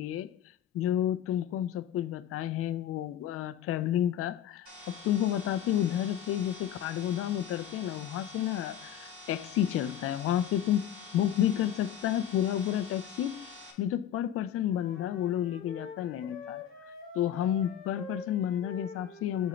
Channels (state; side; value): quieter; right; 10.5 dB